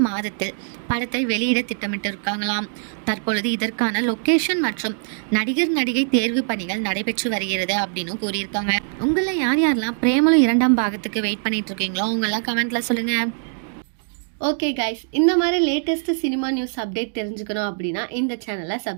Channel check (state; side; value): silent; left; digital silence